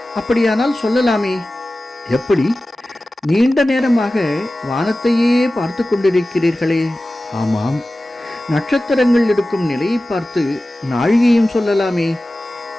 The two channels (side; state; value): both; normal; correlation 0.96